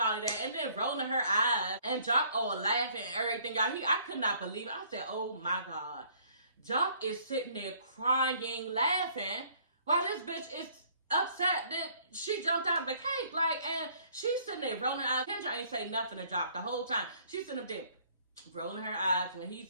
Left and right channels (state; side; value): inverted; both; correlation -0.60